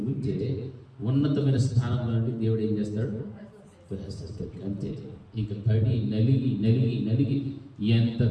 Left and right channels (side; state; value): both; identical; correlation 1.00